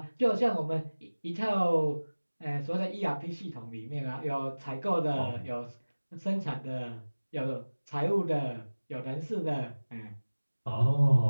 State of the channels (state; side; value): inverted; both; correlation -1.00